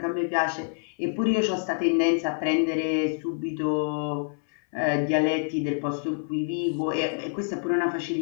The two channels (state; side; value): silent; right; 59 dB below the other